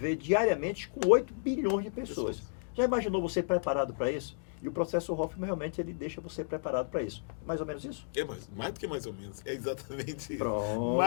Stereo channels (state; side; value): silent; right; digital silence